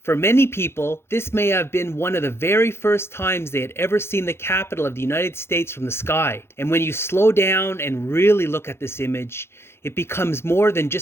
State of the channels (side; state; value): right; late; 0.12 ms